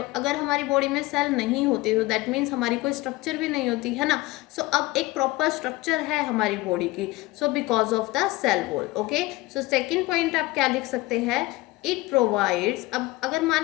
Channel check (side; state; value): right; quieter; 20.2 dB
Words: अगर हमारी बॉडी में सेल नहीं होती तो दैट मीन्स हमारी कोई स्ट्रक्चर भी नहीं होती, है ना। सो अब एक प्रॉपर स्ट्रक्चर है हमारी बॉडी की, so because of the cell wall. Okay, so second point आप क्या लिख सकते हैं, इट प्रोवाइड्स। अब अगर मान